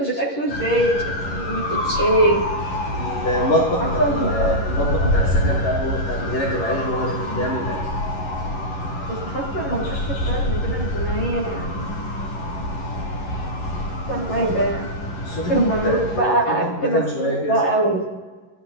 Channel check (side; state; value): right; late; 11 ms